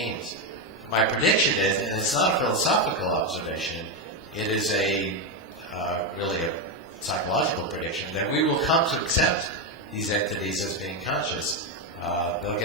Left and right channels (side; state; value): both; normal; correlation 0.07